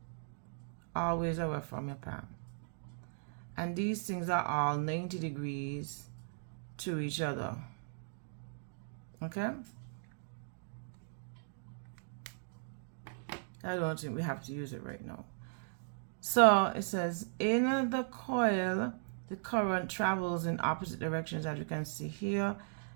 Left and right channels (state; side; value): silent; left; digital silence